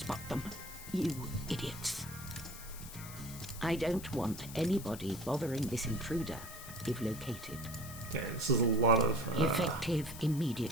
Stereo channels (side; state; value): left; noise; hiss, 13 dB below the sound